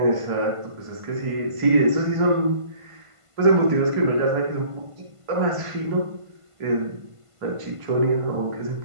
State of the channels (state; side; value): late; left; 1.5 ms